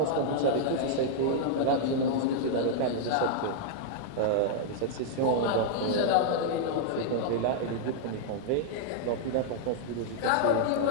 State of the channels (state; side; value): different; both; correlation -0.01